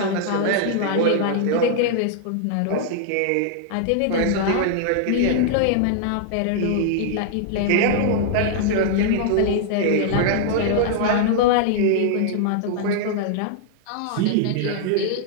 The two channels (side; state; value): both; different; correlation -0.01